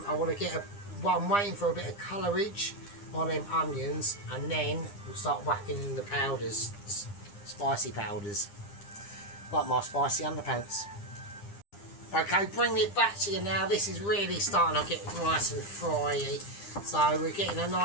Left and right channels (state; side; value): late; right; 9.9 ms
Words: I want to get I'm waiting for a bit of colourage on them onions, and then we'll start whacking in the powders, spicy powders, like my spicy underpants. Okay, bringing it back to you now. This is really starting to get nice and fryy. So we're getting a